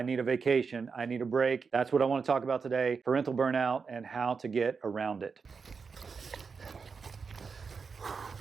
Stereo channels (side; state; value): left; quieter; 5.3 dB